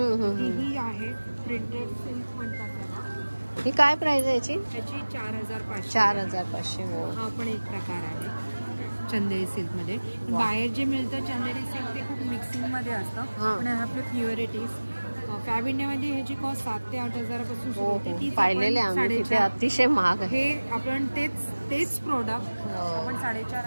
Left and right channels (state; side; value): inverted; both; correlation -1.00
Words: आहे प्रिंटेड सिल्क म्हणतात त्याला. ही काय प्राइस आहे याची? त्याची 4,500. 4,500. हो, हा पण एक प्रकार आहे चंदेरी सिल्कमध्ये. बाहेर जे मिळतं चंदेरी सिल्क ते खूप मिक्सिंगमध्ये असतं, पण हे आपले प्युअरिटीज. फॅब इंडियामध्ये ह्याची कॉस्ट 7 ते 8,000 पासून सुरू होते. ती पाहिलेले आम्ही तिथे अतिशय महाग आहे. हे आपण तेच प्रोडक्ट आपण